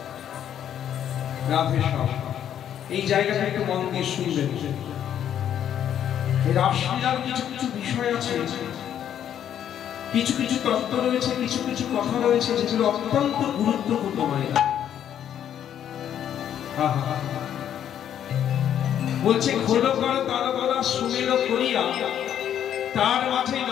রাধে সব এই জায়গাটা একটু মন দিয়ে শুনবেন। রাসলীলার কিছু কিছু বিষয় আছে, কিছু কিছু তত্ত্ব রয়েছে, কিছু কিছু কথা রয়েছে যেগুলো অত্যন্ত গুরুত্বপূর্ণ। মায়েরা বলছে খোলো কর তার গলা সুমের করিয়া, তার মাঝে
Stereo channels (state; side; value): quieter; right; 9.9 dB